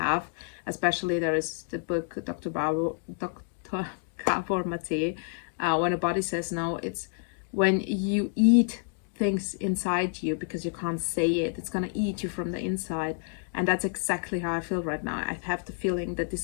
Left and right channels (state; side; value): silent; right; 58 dB below the other